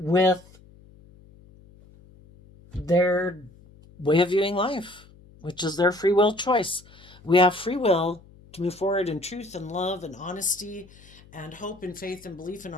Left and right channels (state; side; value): noise; left; hum, 24 dB below the sound